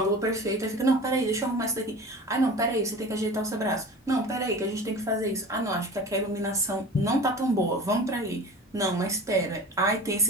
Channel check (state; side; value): normal; both; correlation 0.37